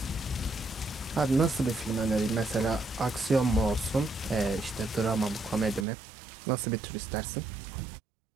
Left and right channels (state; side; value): drops out; left; at 5.9 s